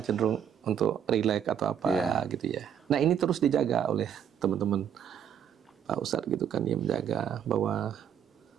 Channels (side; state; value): left; quieter; 8.8 dB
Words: cenderung untuk relax atau apa gitu ya. Nah ini terus dijaga oleh teman-teman Pak Ustadz gitu kan, dia menjaga bahwa